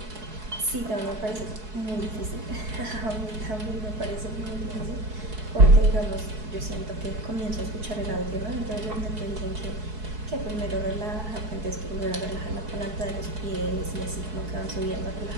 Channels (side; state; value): left; late; 4.7 ms